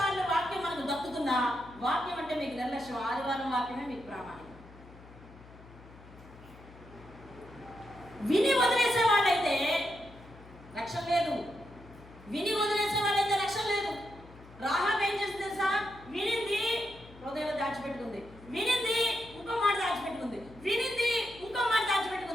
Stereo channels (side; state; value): left; noise; hum, 20 dB below the sound